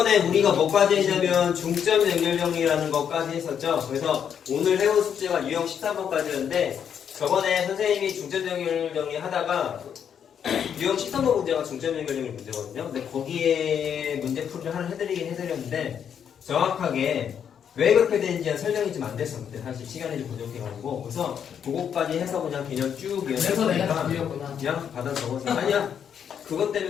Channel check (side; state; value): right; quieter; 8.2 dB